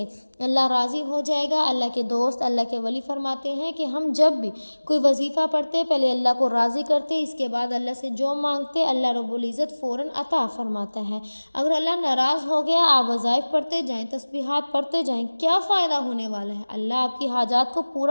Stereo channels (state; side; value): inverted; both; correlation -1.00